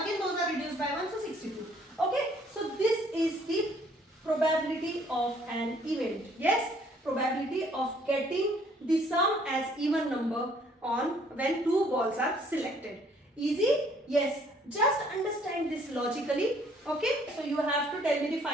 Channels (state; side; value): normal; both; correlation 0.61